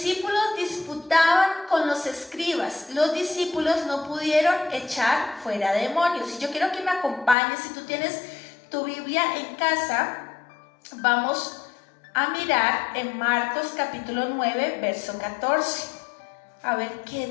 disputaban con los escribas. Los discípulos no pudieron echar fuera demonios. Y yo quiero que me acompañes. Si tú tienes tu Biblia en casa, vamos a mirar en Marcos capítulo 9, verso 14. A ver qué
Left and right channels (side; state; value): right; drops out; at 7.4 s